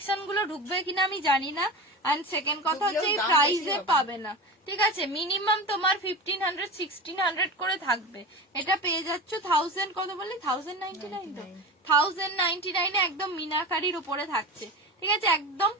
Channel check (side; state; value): both; normal; correlation 0.28